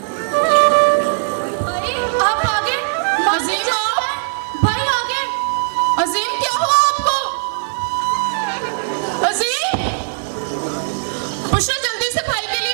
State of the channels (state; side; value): silent; left; 56 dB below the other